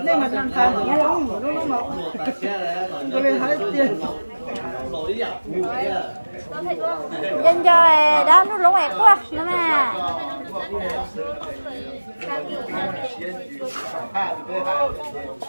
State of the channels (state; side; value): inverted; both; correlation -1.00